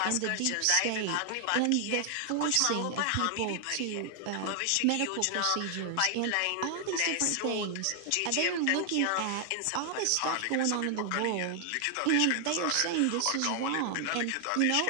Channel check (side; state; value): both; different; correlation 0.00